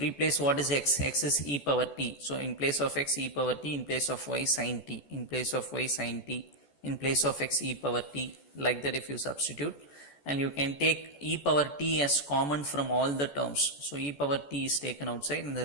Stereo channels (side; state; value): right; late; 14 ms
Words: what is x, x is e power t, so in place of x e power t, in place of y sin t, in place of y sin t, in place of x e power t, like that if you substitute. And you can take e power t as common from all the terms. So e power t is taken outside and the